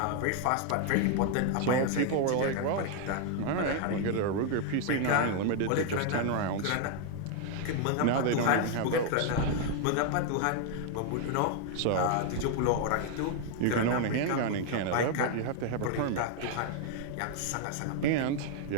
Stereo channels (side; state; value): both; different; correlation 0.00